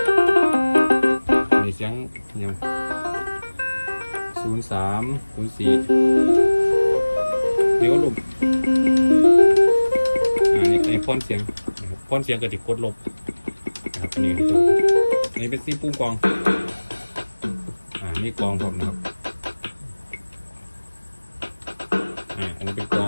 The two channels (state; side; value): inverted; both; correlation -1.00